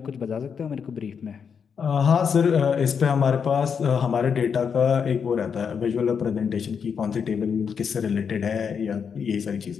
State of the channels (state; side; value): quieter; right; 6.7 dB